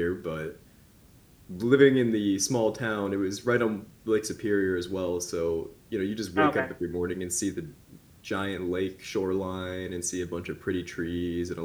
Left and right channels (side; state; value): both; identical; correlation 1.00